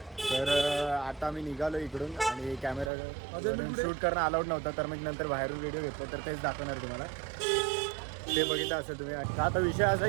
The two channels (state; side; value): drops out; left; at 2.9 s